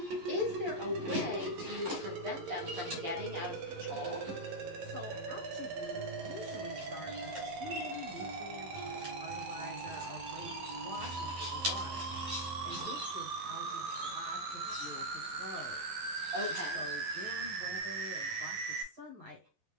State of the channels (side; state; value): left; late; 11 ms